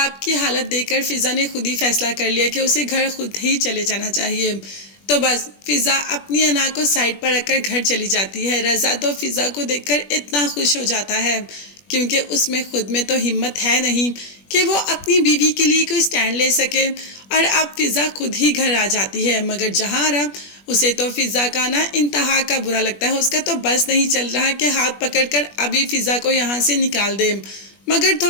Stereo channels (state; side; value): late; right; 21 ms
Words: की हालत देखकर फिज़ा ने खुद ही फैसला कर लिया कि उसे घर खुद ही चले जाना चाहिए। तो बस फिज़ा अपनी अना को साइड पर रखकर घर चली जाती है। रज़ा तो फिज़ा को देखकर इतना खुश हो जाता है क्योंकि उसमें खुद में तो हिम्मत है नहीं कि वो अपनी बीवी के लिए कोई स्टैंड ले सके। और अब फिज़ा खुद ही घर आ जाती है, मगर जहाँ आरा उसे तो फिज़ा का ना इंतहा का बुरा लगता है। उसका तो बस नहीं चल रहा कि हाथ पकड़कर अभी फिज़ा को यहाँ से निकाल दे, मगर